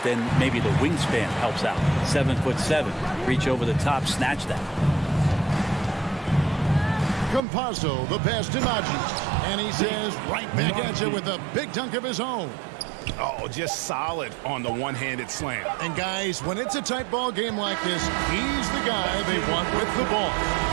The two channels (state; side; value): drops out; left; at 7.5 s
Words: then maybe the wingspan helps out. 7'7". Reach over the top, snatch that. Campazzo, the pass to Najee. And he says right back at you with a big dunk of his own. Oh, just solid on the one-handed slam. And guys, when it's a tight ball game like this, he's the guy they want with the ball.